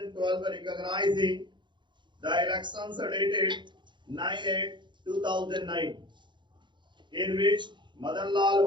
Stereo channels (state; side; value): late; left; 0.23 ms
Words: recognizing the elections dated 9/8/2009, in which Madan Lal